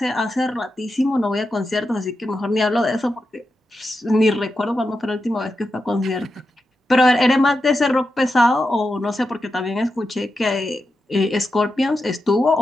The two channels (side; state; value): both; normal; correlation 0.89